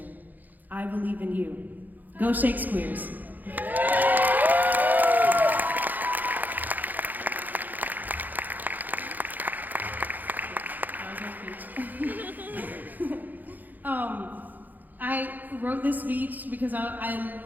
I believe in you. Go Shakespeare's. I wrote this speech because I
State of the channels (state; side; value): late; left; 0.084 ms